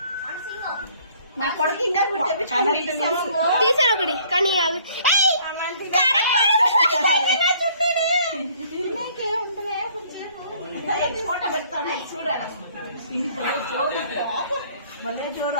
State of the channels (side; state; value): both; inverted; correlation -0.58